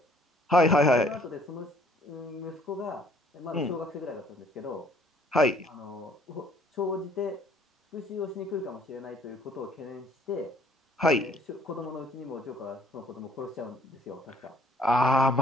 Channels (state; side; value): normal; both; correlation 0.59